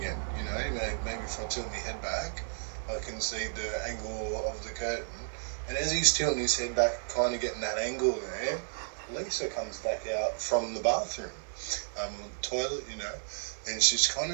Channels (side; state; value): left; silent; digital silence